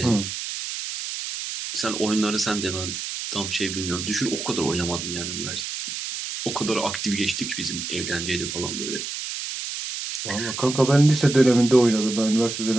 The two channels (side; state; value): right; noise; hiss, 6 dB below the sound